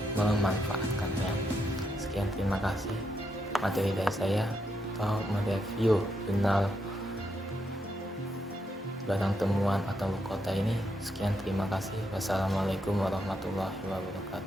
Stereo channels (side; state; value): both; normal; correlation 0.80